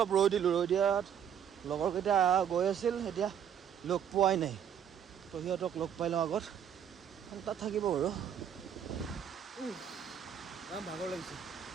ৰৈ দিয়াত লগৰকেইটা গৈ আছিল এতিয়া লগ পোৱাই নাই তো সিহঁতক লগ পাই লওঁ আগত তাত থাকিব বাৰু ভাগৰ লাগিছে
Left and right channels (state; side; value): quieter; left; 8.7 dB